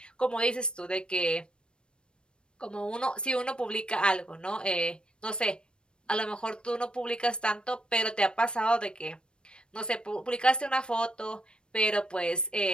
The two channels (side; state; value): right; late; 0.054 ms